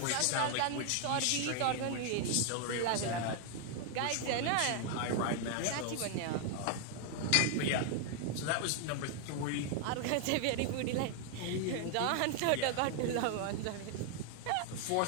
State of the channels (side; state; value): both; different; correlation 0.00